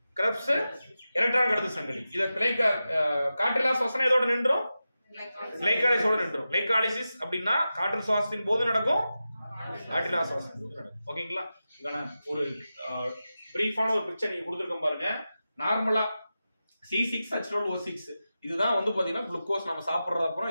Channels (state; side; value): inverted; both; correlation -0.93